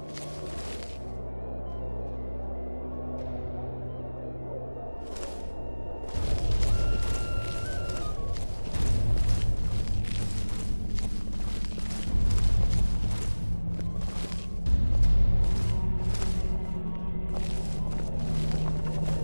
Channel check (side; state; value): both; inverted; correlation -1.00